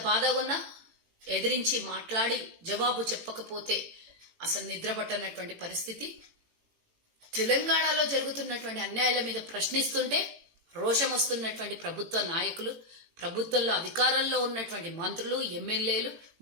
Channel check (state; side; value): late; left; 18 ms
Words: బాధగా ఉన్నా ఎదిరించి మాట్లాడి జవాబు చెప్పకపోతే అసలు నిద్ర పట్టనటువంటి పరిస్థితి. తెలంగాణలో జరుగుతున్నటువంటి అన్యాయాల మీద ప్రశ్నిస్తుంటే రోషం వస్తున్నటువంటి ప్రభుత్వ నాయకులు, ప్రభుత్వంలో అధికారంలో ఉన్నటువంటి మంత్రులు, ఎమ్మెల్యేలు,